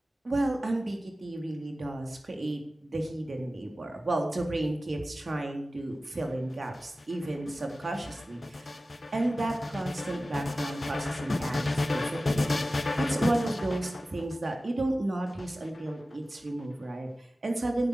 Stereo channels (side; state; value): both; normal; correlation 0.95